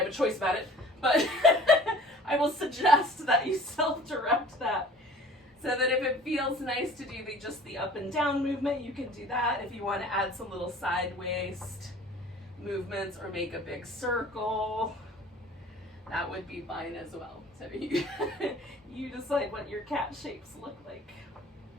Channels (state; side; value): normal; both; correlation 0.46